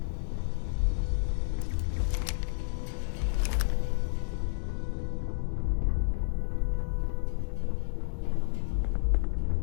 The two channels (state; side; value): silent; right; digital silence